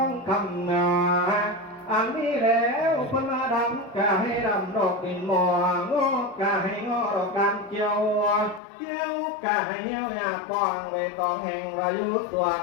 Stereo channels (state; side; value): drops out; right; at 8.6 s